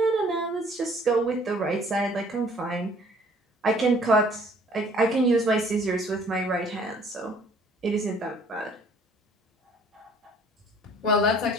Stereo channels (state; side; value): normal; both; correlation 0.56